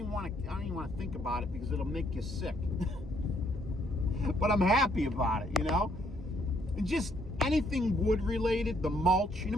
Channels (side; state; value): both; normal; correlation 0.69